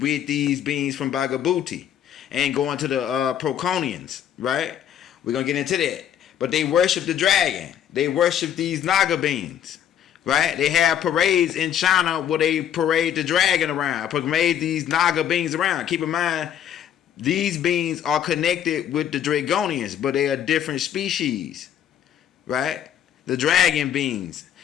with these beings from Bhagabuti. And going to the Proconians, right? We're going to get into that. But they worship the dragon. They worship these Naga beings, right? They have parades in China where they parade the dragon around, parade these Naga beings around. Keep in mind, these beings are connected with the Dragonians, but they are different species, right? The dragon beings,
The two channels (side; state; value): right; quieter; 9.8 dB